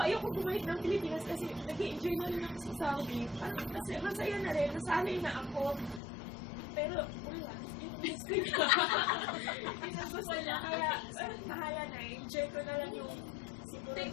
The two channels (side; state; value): right; drops out; at 6.0 s